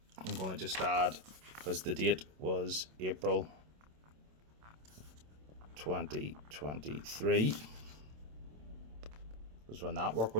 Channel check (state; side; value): late; left; 27 ms